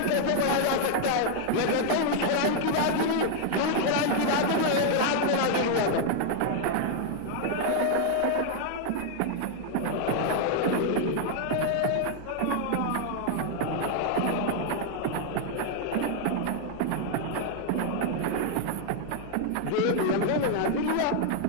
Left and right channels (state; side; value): different; both; correlation 0.00